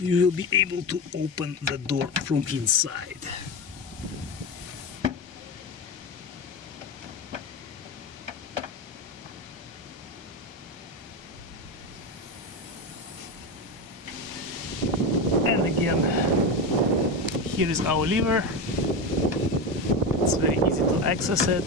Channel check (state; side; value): late; left; 1.2 ms